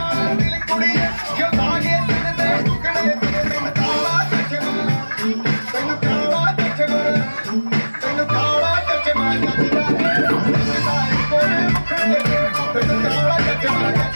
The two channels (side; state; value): both; inverted; correlation -1.00